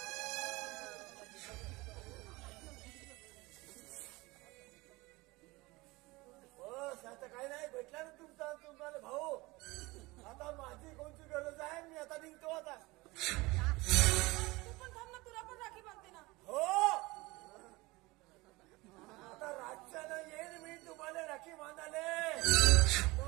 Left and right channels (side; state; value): left; quieter; 22.3 dB